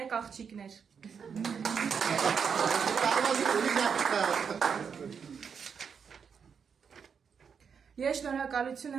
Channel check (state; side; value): quieter; left; 6.6 dB